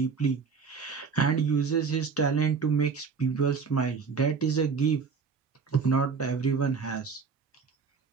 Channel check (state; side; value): quieter; left; 5.5 dB